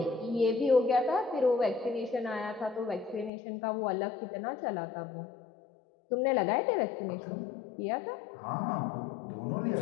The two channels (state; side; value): drops out; right; at 3.3 s